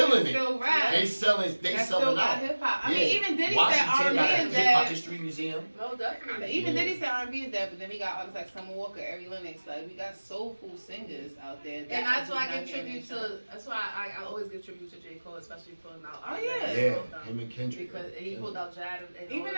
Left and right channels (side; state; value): both; inverted; correlation -1.00